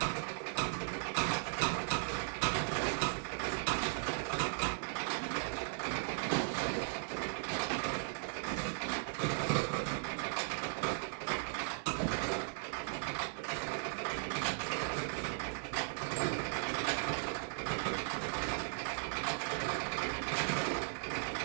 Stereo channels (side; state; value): left; silent; digital silence